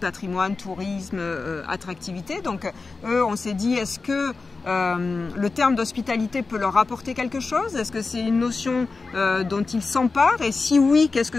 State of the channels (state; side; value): quieter; right; 4.1 dB